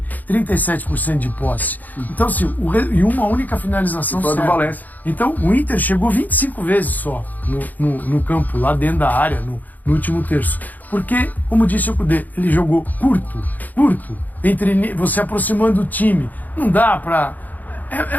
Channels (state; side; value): late; right; 0.082 ms